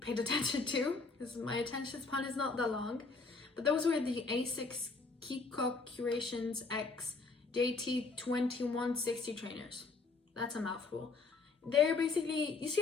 paid attention to because my attention span is not that long. But those were the Asics Kiko Curations X JT2160 trainers. That's a mouthful. They're basically, you see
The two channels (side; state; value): right; quieter; 4.1 dB